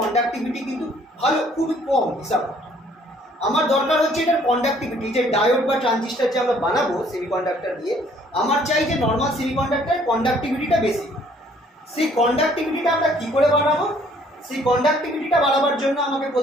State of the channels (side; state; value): both; normal; correlation 0.61